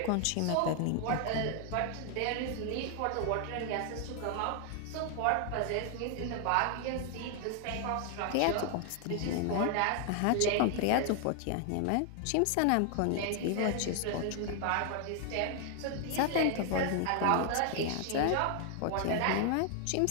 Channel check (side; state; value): both; different; correlation 0.00